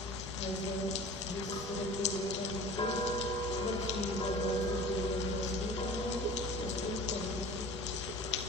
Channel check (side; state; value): both; normal; correlation 0.42